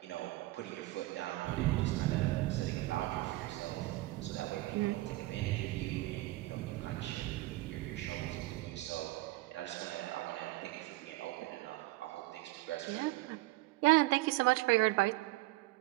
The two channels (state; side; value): quieter; left; 19.2 dB